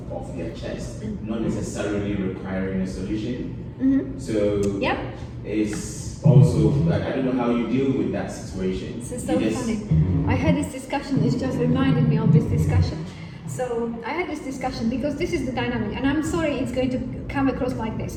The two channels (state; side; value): identical; both; correlation 1.00